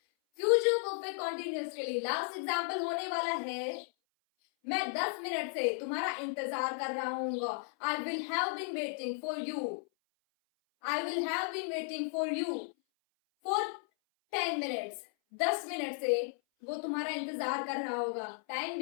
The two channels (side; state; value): right; silent; 55 dB below the other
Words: Future perfect continuous के लिए लास्ट एग्जाम्पल होने वाला है, मैं 10 मिनट से तुम्हारा इंतजार कर रहा हूँ। I will have been waiting for you for 10 minutes. 10 minute से वो तुम्हारा इंतजार कर रहा होगा। टाइम